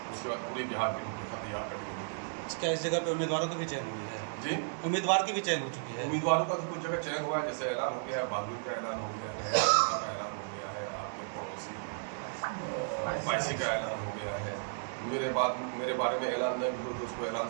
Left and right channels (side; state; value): left; silent; digital silence